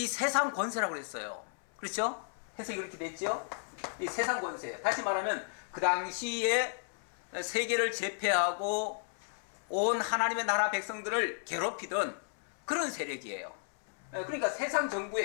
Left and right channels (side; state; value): right; silent; 55 dB below the other